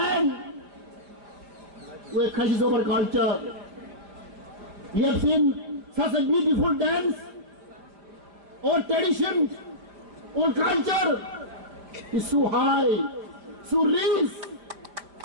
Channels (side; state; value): left; late; 5.1 ms